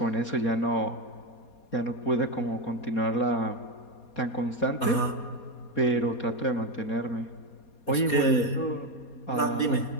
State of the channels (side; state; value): right; late; 4.2 ms